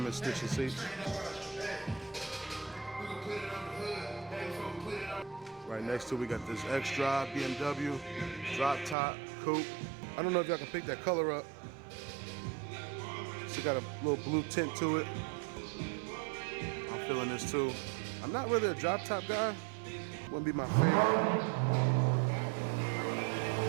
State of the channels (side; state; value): left; drops out; at 9.0 s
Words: stitching seats. Right next to it, we got this X-Drive BMW drop top coupe. I don't know if y'all can pick that color up. It's got a little blue tint to it. I'm feeling this too. I'm not really a drop top guy. Wouldn't be my favorite.